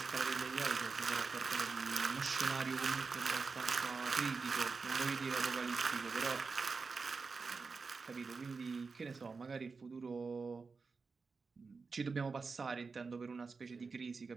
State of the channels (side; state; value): left; quieter; 4.6 dB